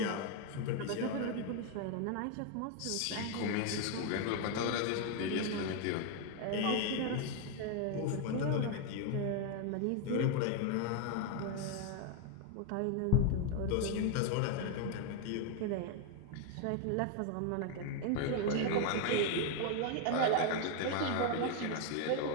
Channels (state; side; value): different; both; correlation 0.01